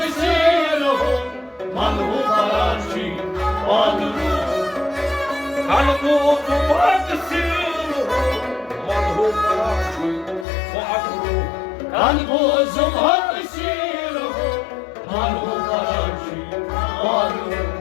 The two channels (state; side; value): drops out; right; at 10.5 s